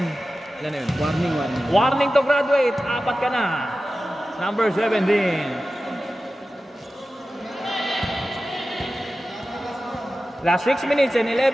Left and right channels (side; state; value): both; normal; correlation 0.94